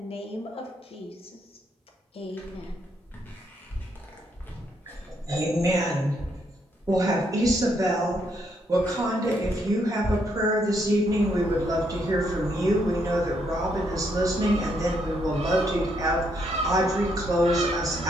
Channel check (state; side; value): normal; both; correlation 0.74